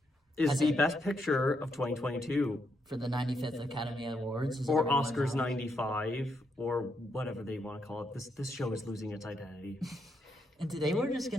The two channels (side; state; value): both; normal; correlation 0.79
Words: is the best picture of 2022. For the 95th Academy Awards. Or Oscars 95, or whatever they want to call it. This show is losing its identity. And today we're just